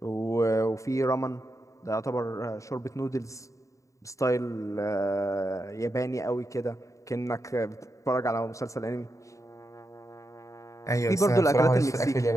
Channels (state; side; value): late; right; 0.15 ms